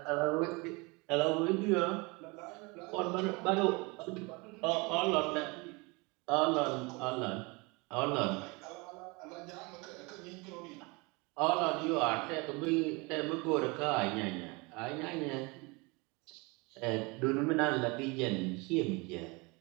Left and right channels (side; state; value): left; quieter; 27.1 dB